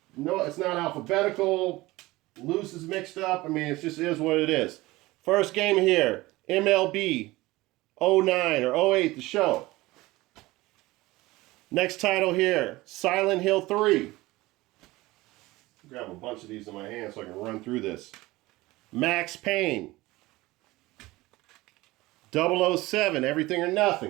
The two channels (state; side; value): quieter; left; 19.7 dB